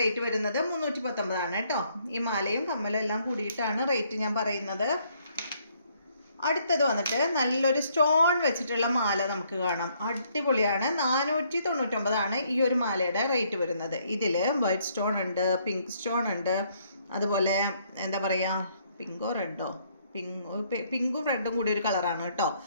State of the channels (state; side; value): inverted; both; correlation -0.68